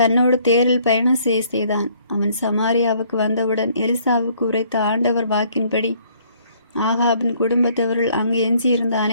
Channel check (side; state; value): both; inverted; correlation -0.63